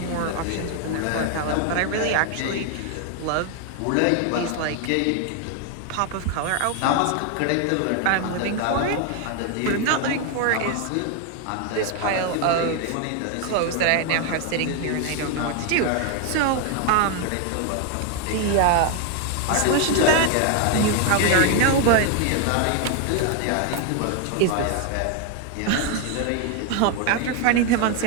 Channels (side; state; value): both; different; correlation 0.01